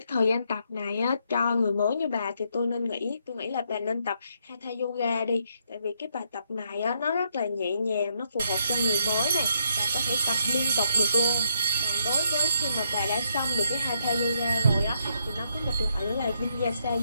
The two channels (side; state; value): both; inverted; correlation -0.75